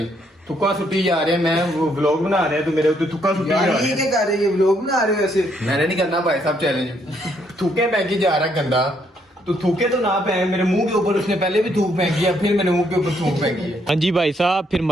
थुक्का सुट्टी जा रहे हैं। मैं वो व्लॉग बना रहे हैं तो मेरे ऊपर थुक्का सुट्टी जा यार रहे ये हैं। क्या कर रहे हो? व्लॉग बना रहे हो ऐसे? मैंने नहीं करना भाई साहब चैलेंज। थूके फेंकी जा रहा है गंदा, तो थूके तो ना फेंक। मेरे मुंह के ऊपर उसने पहले भी थूक फेंकी है, फिर मेरे मुंह के ऊपर थूक फेंकी है। हाँ जी भाई साहब, फिर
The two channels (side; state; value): both; normal; correlation 0.72